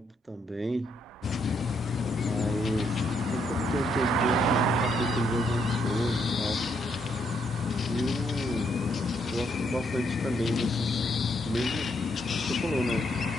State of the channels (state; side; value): normal; both; correlation 0.74